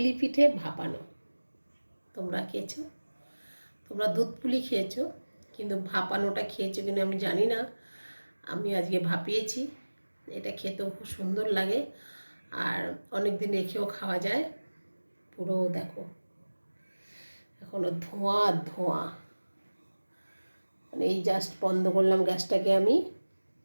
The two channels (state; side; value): inverted; both; correlation -1.00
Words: পিঠে ভাপানো। তোমরা খেয়েছো? তোমরা দুধ পুলি খেয়েছো, কিন্তু ভাপানোটা খেয়েছো কিনা আমি জানি না। আমি আজকে ভাপিয়েছি। এটা খেতেও খুব সুন্দর লাগে, আর অনেক দিন রেখেও খাওয়া যায়। পুরো দেখো এখনো ধোঁয়া ধোঁয়া, মানে এই জাস্ট বন্ধ করলাম গ্যাসটাকে আমি,